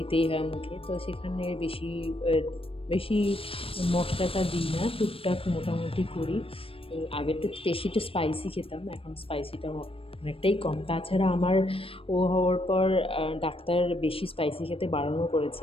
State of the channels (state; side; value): late; right; 0.27 ms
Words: হয় মুখে, তো সেখানে বেশি মশলাটা দিই না, টুকটাক মোটামুটি করি। আগে তো বেশি স্পাইসি খেতাম, এখন স্পাইসিটা অনেকটাই কম। তাছাড়া আমার ও হওয়ার পর ডাক্তার বেশি স্পাইসি খেতে বারণও